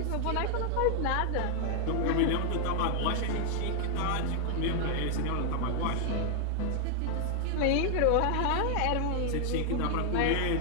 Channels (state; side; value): different; both; correlation 0.00